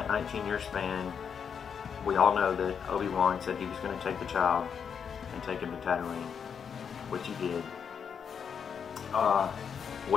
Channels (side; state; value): right; quieter; 7.0 dB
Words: 19-year span, we all know that Obi Wan said he was going to take the child and take him to Tatooine, which he did.